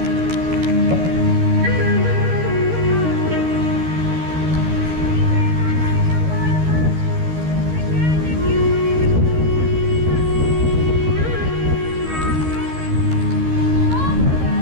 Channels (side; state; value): left; late; 13 ms